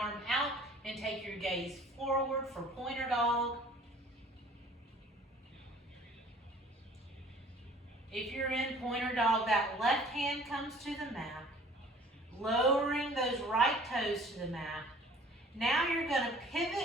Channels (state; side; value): normal; both; correlation 0.51